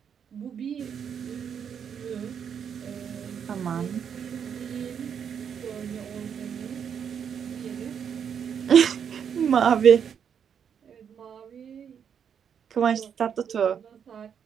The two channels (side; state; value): left; quieter; 7.8 dB